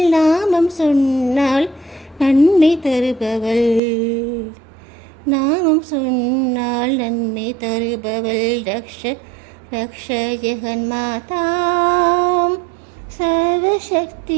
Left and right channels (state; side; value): drops out; left; at 3.8 s